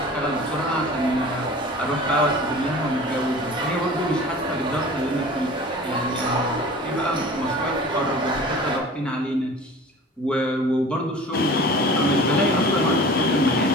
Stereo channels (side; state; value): both; normal; correlation 0.41